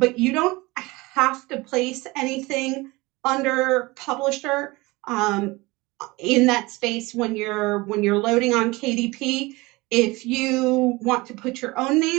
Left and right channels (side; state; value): left; quieter; 22.6 dB